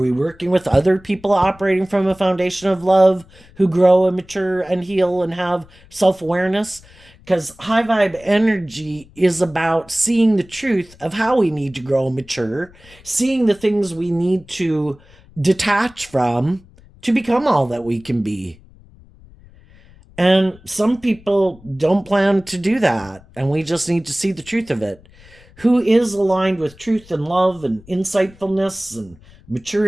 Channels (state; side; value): noise; left; rumble, 25 dB below the sound